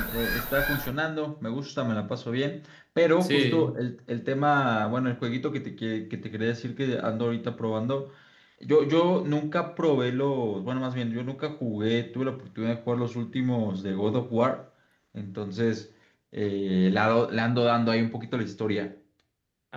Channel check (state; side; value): identical; both; correlation 1.00